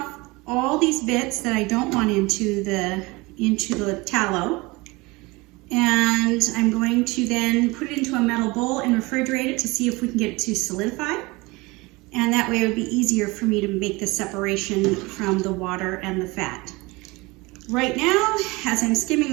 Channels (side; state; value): left; quieter; 23.7 dB